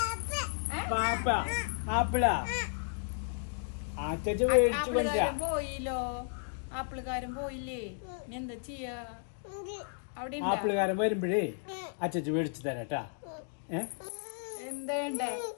പാപ്പ ആപ്പിളാ അച്ഛൻ മേടിച്ചു കൊണ്ടാ പോയില്ലോ. ആപ്പിളുകാരൻ പോയില്ലേ, ഇനി എന്താ ചെയ്യാ? അവിടെ ആപ്പിളുകാരൻ വരുമ്പോഴേ അച്ഛൻ മേടിച്ചു തരാട്ടാ. എന്താ വേണ്ടേ?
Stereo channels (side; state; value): right; silent; digital silence